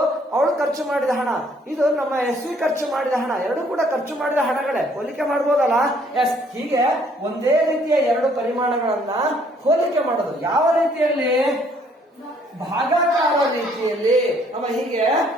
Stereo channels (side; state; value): both; normal; correlation 0.63